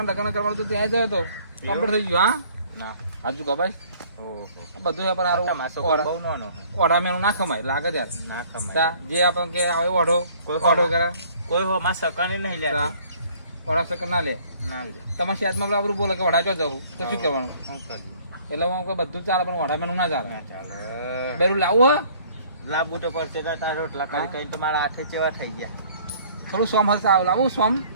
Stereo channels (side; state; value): both; inverted; correlation -0.56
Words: લગ્ન કરવાનું તો ત્યાં જયો તો કમ્પ્લીટ થઈ ગયું હા ના હાજુ કભાઈ બધું પણ સારું ઓઢા મેનું ના ખમાય લાગે ત્યારે ના ખમાય જે આપણે કે આવે ઓઢો ઓઢો કરે કોઈ હો માં સકને નહીં લે ઓઢા સકન ના લે તમારા શેતમાં બરાબર બોલે કે ઓઢા જો જવું તો શું કરવાનું એટલે હું બધું ચાલે પણ ઓઢા મેનું ના ચાલે બેરું લાવવું હે લાવવું તો પડશે તારા રોટલા કરી કઈ તો મારા હાથે ચેવા થઈ ગયા થોડું સોમ હશે લાવું સોમ